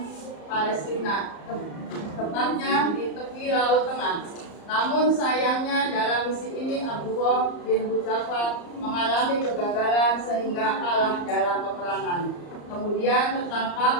Palestina, tepatnya di tepi Laut Tengah. Namun sayangnya dalam misi ini Abdullah bin Hudzafah mengalami kegagalan sehingga kalah dalam peperangan. Kemudian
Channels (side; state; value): right; late; 34 ms